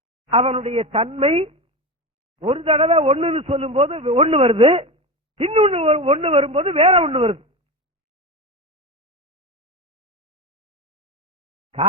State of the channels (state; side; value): normal; both; correlation 0.21